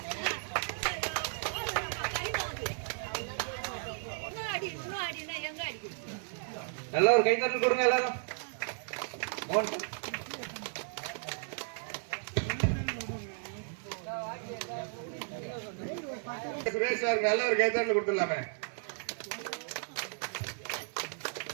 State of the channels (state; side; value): silent; left; 55 dB below the other